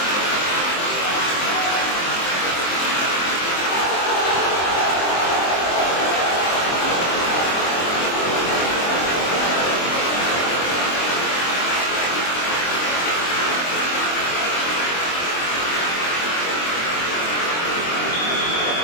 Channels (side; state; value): right; late; 23 ms